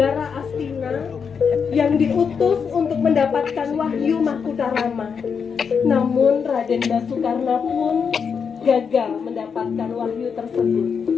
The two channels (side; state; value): right; quieter; 6.3 dB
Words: Astina yang diutus untuk mendapatkan wahyu Mahkutarama. Namun Raden Basukarna pun gagal mendapatkan wahyu tersebut.